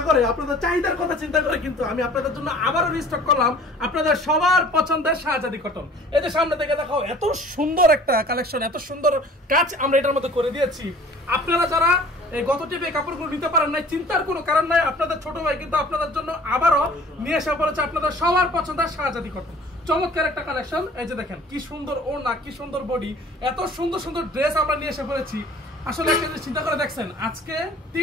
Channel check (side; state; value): both; normal; correlation 0.49